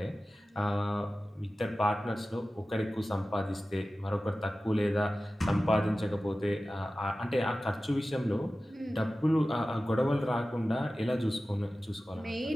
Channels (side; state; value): both; normal; correlation 0.95